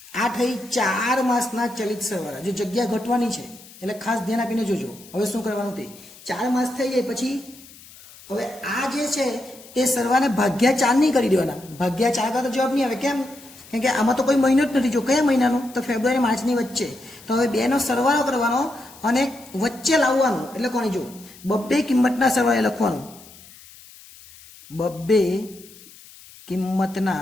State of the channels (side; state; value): left; noise; hiss, 21 dB below the sound